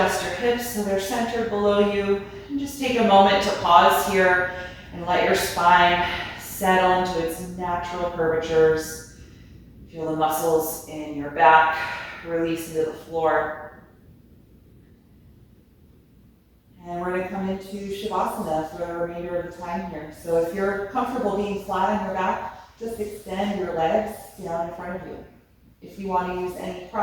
your hips so they're centered below you, and just take a moment to pause here and let your spine settle into its natural curvatures. Feel the muscles in your back release into the floor. And we're going to come into Shavasana for the remainder of the time here. So if you're comfortable being flat on your back, just extend your legs down in front of you. If you want to use any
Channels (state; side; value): identical; both; correlation 1.00